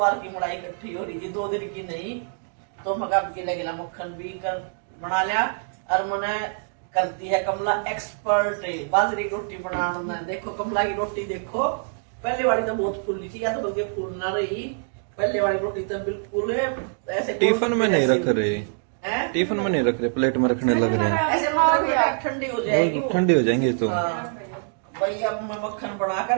की मलाई इकट्ठी हो रही थी, 2 दिन की नहीं। तो मगा गिला गिला मक्खन भी कर बना लिया। और मैंने करती है कमला एक्सपर्ट बाजरे की रोटी बनाने में। देखो कमला की रोटी देखो, पहले वाली तो बहुत फूली थी, या तो बल्कि फूल ना रही, पहले वाली रोटी तो बिल्कुल ऐसे टिफिन में नहीं रख रहे, टिफिन में नहीं रख रहे, प्लेट में रखने लग रहे हैं, ऐसे ठंडी हो जाएगी, ठंडी हो जाएंगी तो। भाई अब मैं मक्खन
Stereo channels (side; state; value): left; silent; digital silence